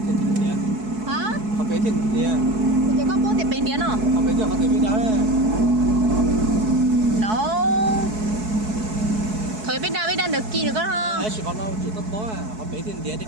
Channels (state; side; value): late; left; 4.6 ms